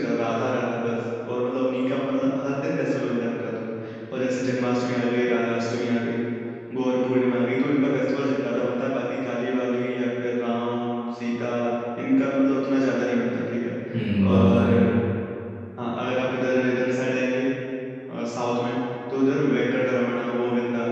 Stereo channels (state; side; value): identical; both; correlation 1.00